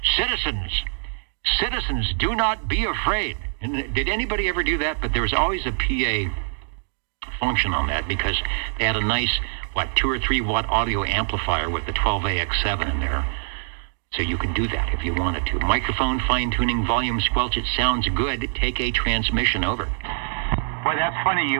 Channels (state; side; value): silent; left; digital silence